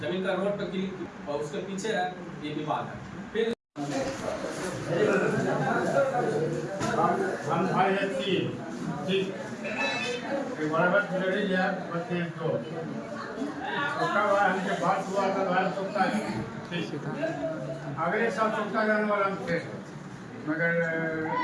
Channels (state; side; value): identical; both; correlation 1.00